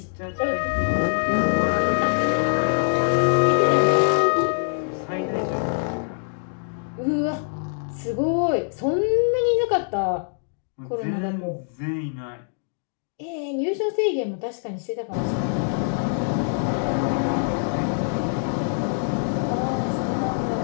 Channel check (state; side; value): silent; right; digital silence